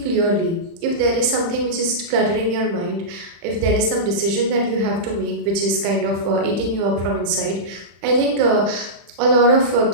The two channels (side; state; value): left; late; 35 ms